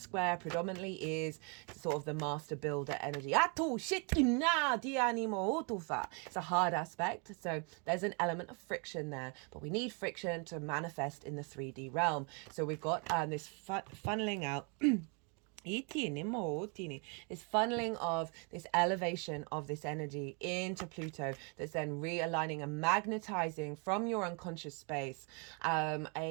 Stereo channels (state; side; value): quieter; left; 35.0 dB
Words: predominantly is sort of the master builder energy. It's a hard aspect, so there's an element of friction there, but we need friction to manifest in the 3D realm. So we've got this funneling out This funneling of this elevation of this energy into Pluto that's then realigning and magnetizing from your unconscious space